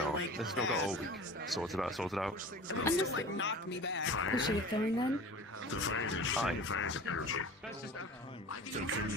This has not got all week. Sorted out, sorted out. I'm just like knock me back. Who's she going then? Aye.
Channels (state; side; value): normal; both; correlation 0.39